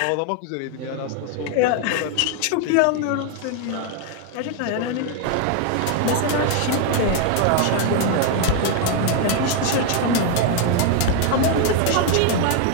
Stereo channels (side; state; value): both; different; correlation 0.01